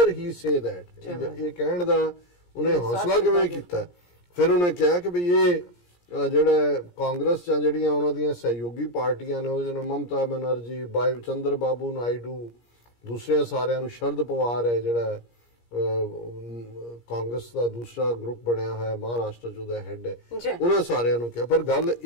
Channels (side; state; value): right; late; 17 ms